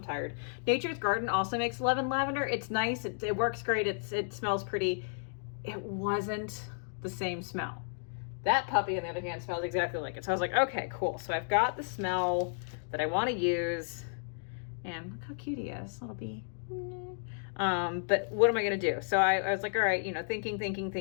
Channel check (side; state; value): right; silent; digital silence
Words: tired. Nature's Garden also makes lemon lavender. It's nice. It works great. It smells pretty. It wasn't the same smell. That puppy, on the other hand, smells exactly like it. So I was like, okay, cool. So I've got the smell that I want to use. And look how cute he is, little bee. But what am I going to do? So I was like, all right, you know,